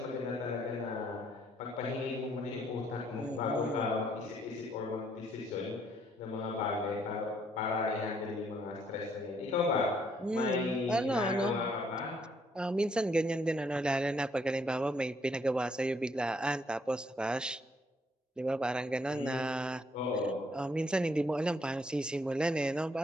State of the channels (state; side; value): normal; both; correlation 0.69